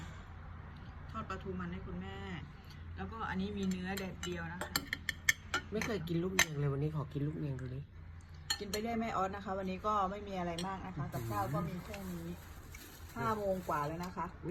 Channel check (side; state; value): both; identical; correlation 1.00